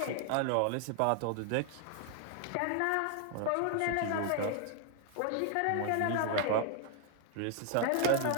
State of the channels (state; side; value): different; both; correlation 0.00